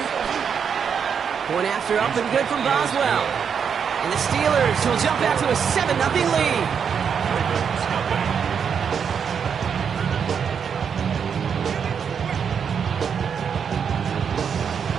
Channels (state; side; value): quieter; left; 7.0 dB